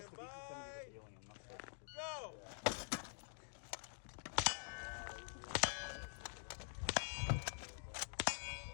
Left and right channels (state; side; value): silent; right; digital silence